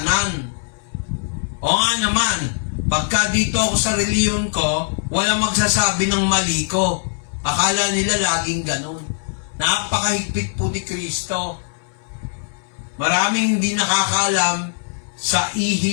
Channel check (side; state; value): right; silent; 64 dB below the other